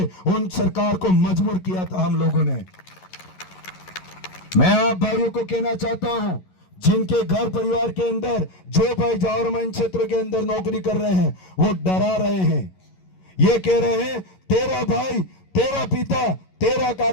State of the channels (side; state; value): right; late; 11 ms